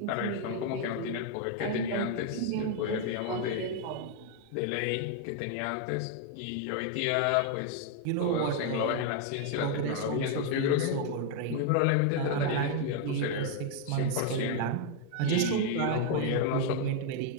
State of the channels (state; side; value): different; both; correlation 0.00